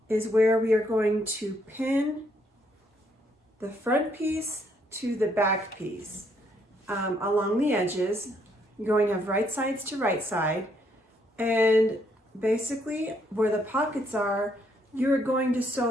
is where we are going to pin the front piece to the back piece along the edges. You're going to have right sides to right side, and basically where the pockets are, you're going to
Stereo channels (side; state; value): both; normal; correlation 0.71